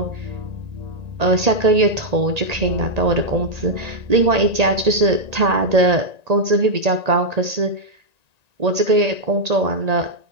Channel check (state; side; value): late; left; 1.9 ms